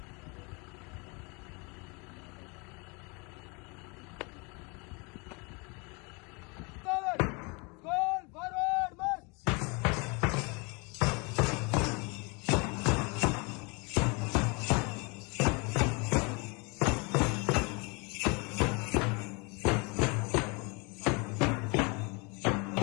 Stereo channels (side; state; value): right; quieter; 30.1 dB